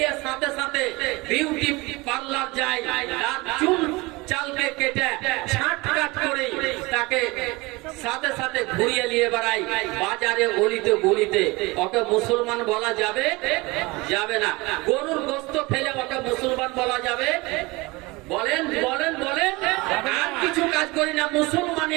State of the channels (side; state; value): left; quieter; 23.6 dB